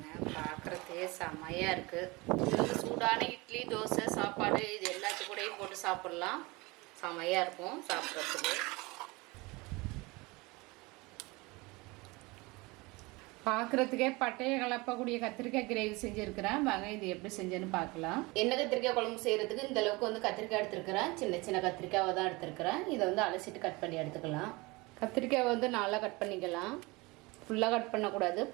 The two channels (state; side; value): quieter; left; 24.3 dB